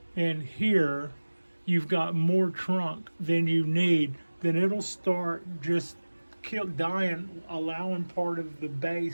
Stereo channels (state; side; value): inverted; both; correlation -1.00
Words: and here you've got more trunk than you need, then it'll start just dying, allowing part of the